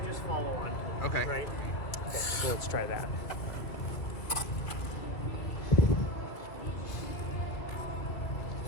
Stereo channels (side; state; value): right; late; 2.3 ms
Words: just follow on. Okay. Right? Okay, so let's try that.